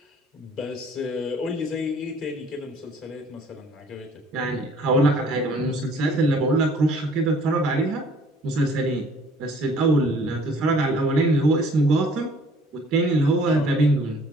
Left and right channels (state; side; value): normal; both; correlation 0.56